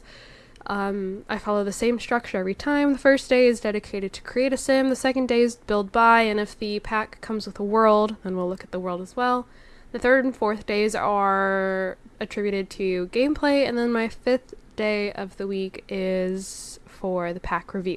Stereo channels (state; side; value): identical; both; correlation 1.00